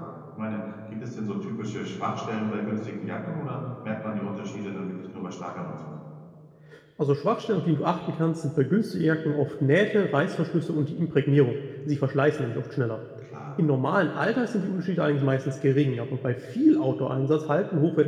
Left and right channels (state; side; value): identical; both; correlation 1.00